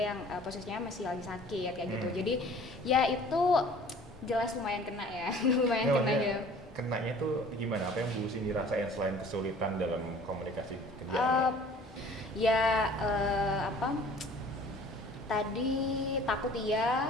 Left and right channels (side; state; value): both; normal; correlation 0.49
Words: yang posisinya masih lagi sakit kayak gitu. Jadi ya itu jelas lumayan kena ya. Lumayan kena ya. Kenanya tuh gimana? Apa yang Bu Cindy rasain selain kesulitan dalam komunikasi kerja? Tadi takut